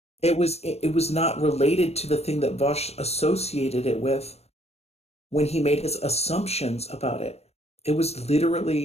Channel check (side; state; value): right; late; 0.30 ms